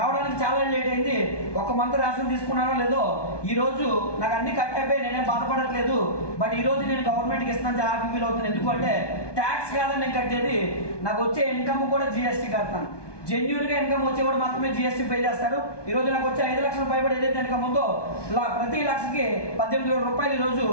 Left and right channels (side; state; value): right; late; 1.2 ms